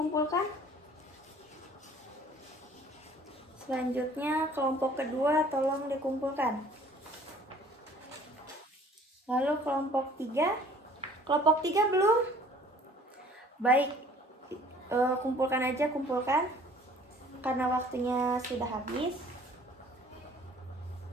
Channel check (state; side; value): normal; both; correlation 0.53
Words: Selanjutnya kelompok kedua tolong dikumpulkan. Lalu kelompok 3. Kelompok 3 belum? Baik. Kumpulkan karena waktunya sudah habis.